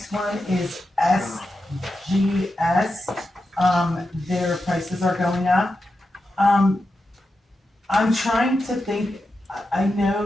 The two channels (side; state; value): both; normal; correlation 0.89